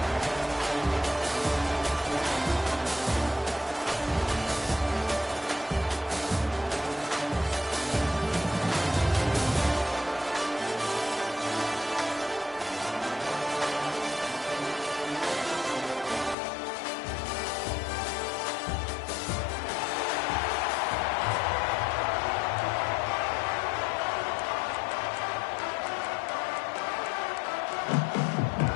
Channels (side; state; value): right; drops out; at 16.4 s